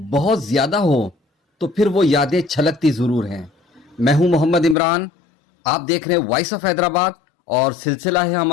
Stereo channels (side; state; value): right; drops out; at 4.8 s